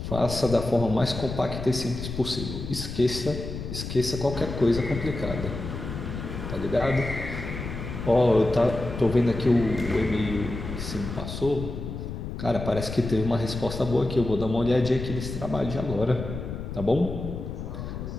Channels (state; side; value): noise; left; rumble, 7 dB below the sound